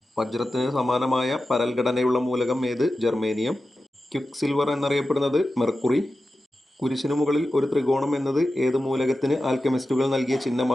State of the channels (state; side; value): normal; both; correlation 0.93